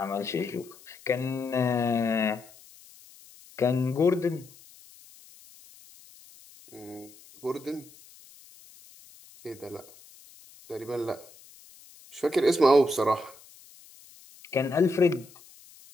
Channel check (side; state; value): left; noise; hiss, 23 dB below the sound